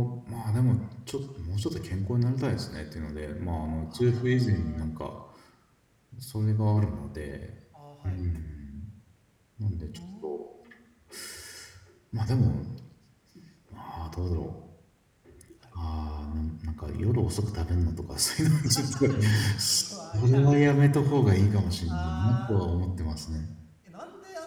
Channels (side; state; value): both; identical; correlation 1.00